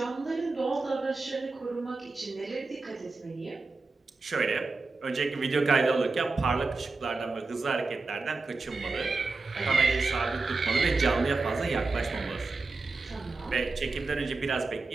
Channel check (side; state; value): left; quieter; 3.7 dB